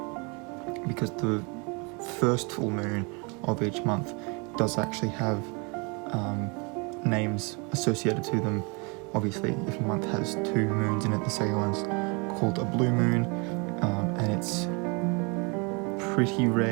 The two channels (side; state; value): left; quieter; 31.7 dB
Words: because the first full moon of each month does actually have names associated to them. Obviously, if a month has two moons in it, the second one's called a blue moon, and it's pretty